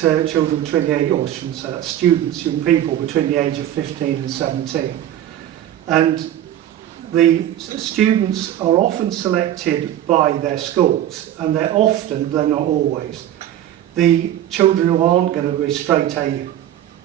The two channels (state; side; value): quieter; left; 11.8 dB